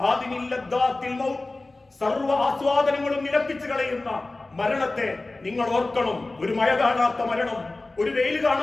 ഹാദിമിൽ ലദ്ദാത്തിൽ മൗത്ത്, സർവ്വ ആസ്വാദനങ്ങളും നിലപ്പിച്ചു കളയുന്ന മരണത്തെ നിങ്ങൾ ഓർക്കണം. ഒരു മഴ കാണാത്ത മരണം, ഒരു വെയിൽ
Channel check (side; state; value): right; quieter; 3.1 dB